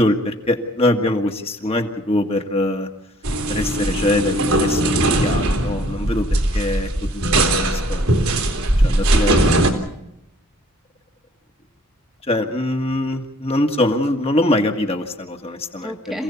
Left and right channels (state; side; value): normal; both; correlation 0.58